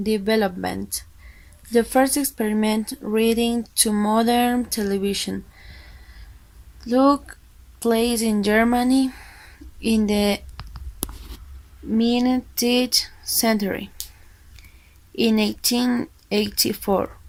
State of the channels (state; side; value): identical; both; correlation 1.00